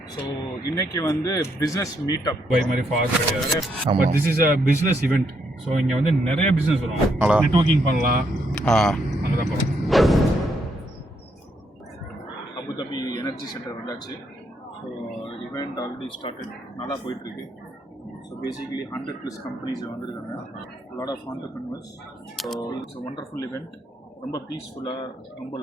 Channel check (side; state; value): both; normal; correlation 0.76